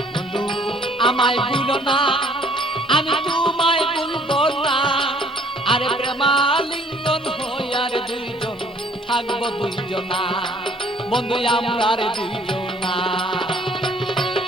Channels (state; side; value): normal; both; correlation 0.59